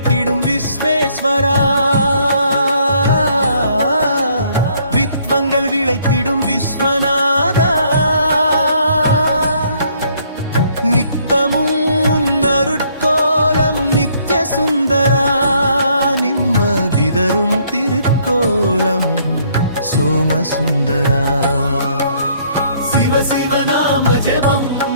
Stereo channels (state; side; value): inverted; both; correlation -0.65